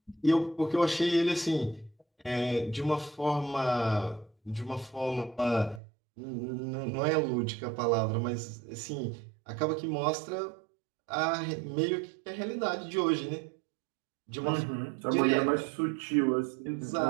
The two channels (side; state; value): left; drops out; at 5.8 s